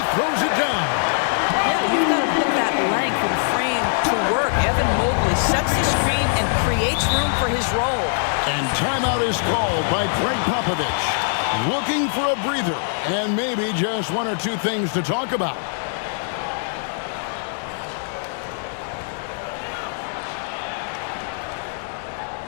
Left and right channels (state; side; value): silent; right; digital silence